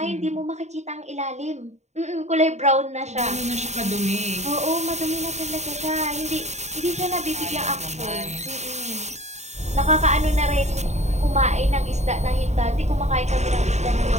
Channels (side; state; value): left; late; 0.33 ms